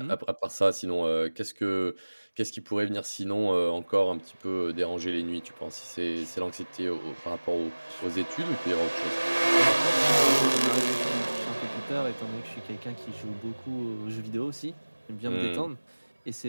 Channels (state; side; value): inverted; both; correlation -1.00